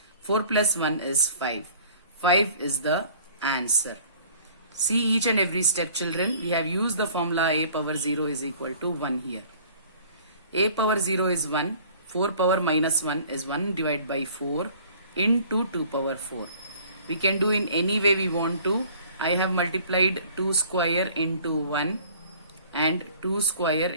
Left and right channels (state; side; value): inverted; both; correlation -0.51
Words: 4 plus 1 is 5. 5 is the answer. See each and every step, children. We have used the formula a power 0 is equal to 1 here. A power 0 is 1. 4 power minus 1 is 1 divided by 4 into 2 power 4. We can do in any way we want to. I have multiplied 2 square into 1 and 2 square